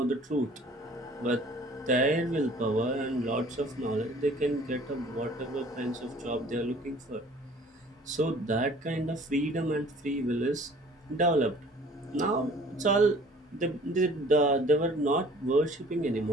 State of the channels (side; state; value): both; normal; correlation 0.51